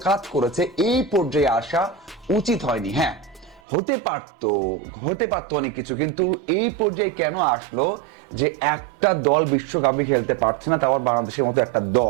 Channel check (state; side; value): drops out; left; at 3.6 s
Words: কাজ করেছে, এই পর্যায়ে আসা উচিত হয়নি। হ্যাঁ, হতে পারতো অনেক কিছু, কিন্তু এই পর্যায়ে কেন আসলো যে একটা দল বিশ্বকাপে খেলতে পারছে না, তাও বাংলাদেশের মতো একটা